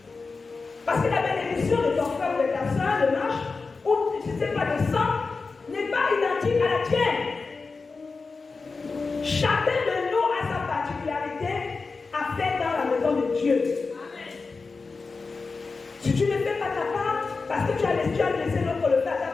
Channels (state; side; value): quieter; right; 4.3 dB